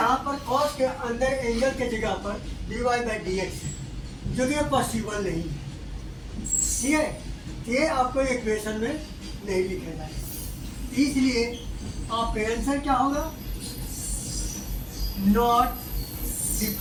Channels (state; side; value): identical; both; correlation 1.00